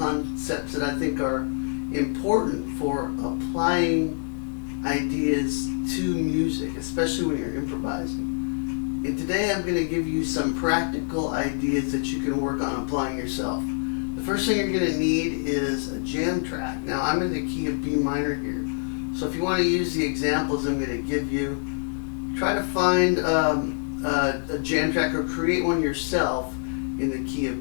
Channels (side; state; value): right; silent; digital silence